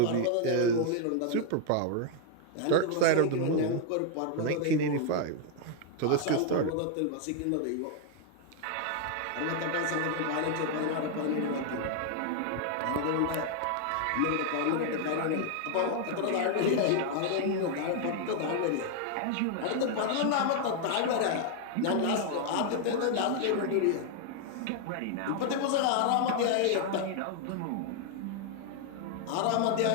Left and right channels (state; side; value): different; both; correlation 0.00